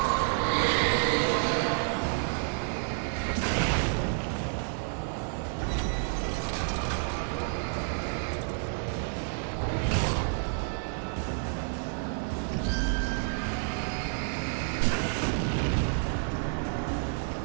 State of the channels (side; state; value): left; silent; 58 dB below the other